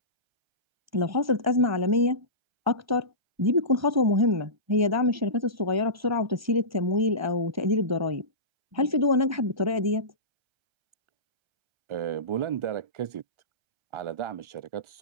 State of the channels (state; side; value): late; left; 1.3 ms